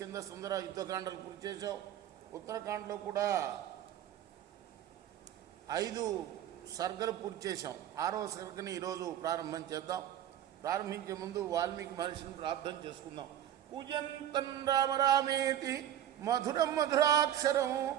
సుందర యుద్ధకాండలు పూర్తి చేశాం. ఉత్తరాఖండ్లో కూడా 5 సర్గలు పూర్తి చేశాం. 6వ సర్గని ఈరోజు ప్రారంభం చేద్దాం. ప్రారంభించే ముందు వాల్మీకి మహర్షిని ప్రార్థన చేసుకుందాం. పూజంతం రామ రామేతి మధురం మధురాక్షరం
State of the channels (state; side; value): quieter; left; 11.2 dB